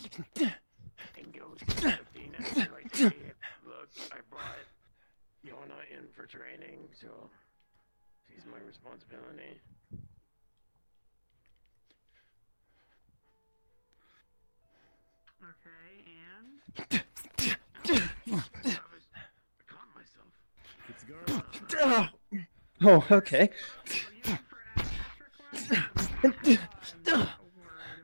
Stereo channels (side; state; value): both; inverted; correlation -1.00